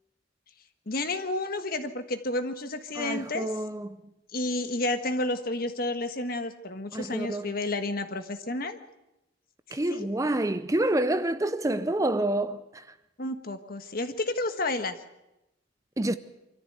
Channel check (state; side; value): normal; both; correlation 0.44